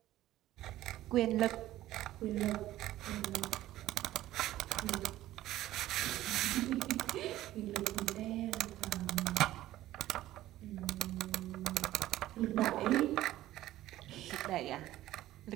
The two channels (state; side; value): quieter; left; 14.7 dB